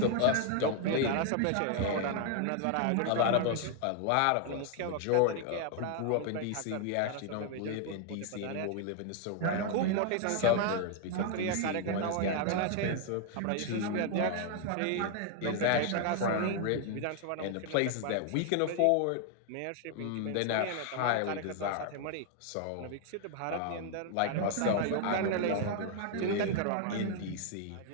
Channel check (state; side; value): different; both; correlation 0.00